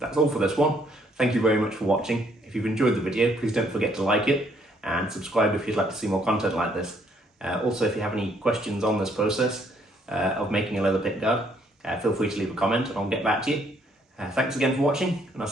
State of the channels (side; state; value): both; normal; correlation 0.67